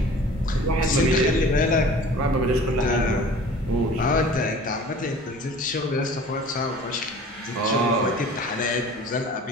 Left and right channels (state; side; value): normal; both; correlation 0.45